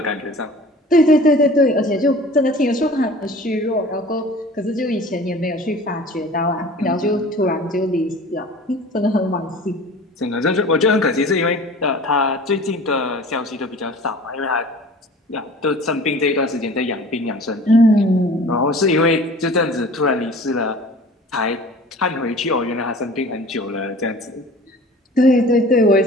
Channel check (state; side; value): normal; both; correlation 0.43